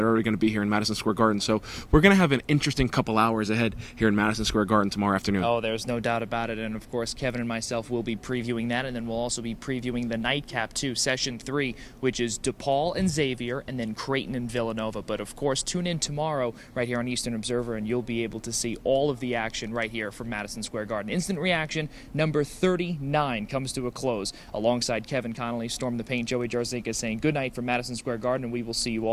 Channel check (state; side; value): identical; both; correlation 1.00